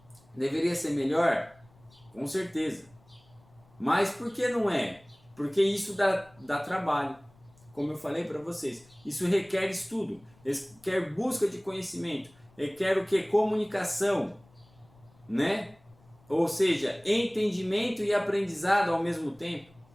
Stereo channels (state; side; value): noise; left; rumble, 29 dB below the sound